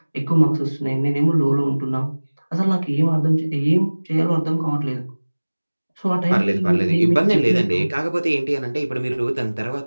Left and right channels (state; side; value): inverted; both; correlation -1.00